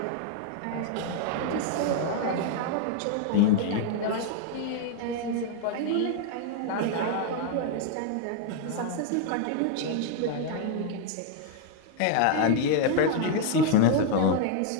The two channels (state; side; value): different; both; correlation 0.00